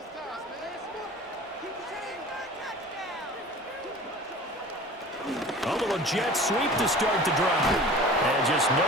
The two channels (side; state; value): both; normal; correlation 0.41